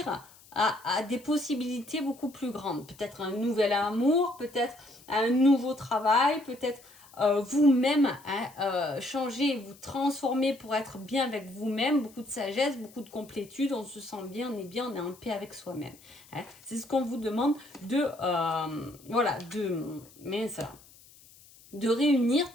à des possibilités beaucoup plus grandes. Peut-être un nouvel amour, peut-être un nouveau travail, peut-être vous-même, hein, changer, vous transformer pour être bien avec vous-même, beaucoup de sagesse, beaucoup de complétude, on se sent bien, on est en paix avec soi-même, hein. C'est ce qu'on vous demande de, voilà, de réunir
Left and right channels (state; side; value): noise; left; hiss, 24 dB below the sound